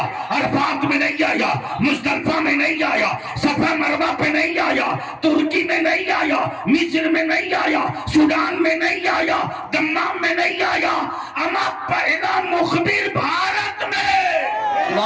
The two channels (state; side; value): identical; both; correlation 1.00